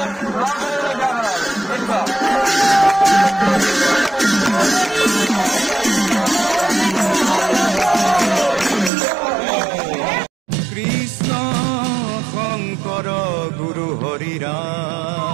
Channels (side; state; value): left; drops out; at 8.9 s